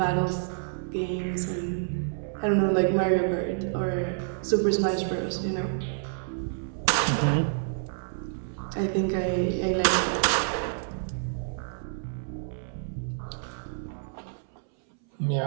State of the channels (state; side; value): silent; left; 59 dB below the other